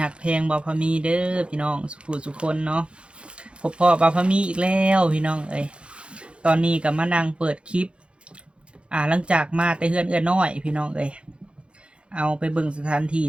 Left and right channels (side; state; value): left; late; 0.057 ms